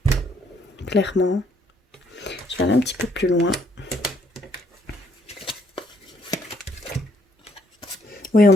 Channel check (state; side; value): normal; both; correlation 0.68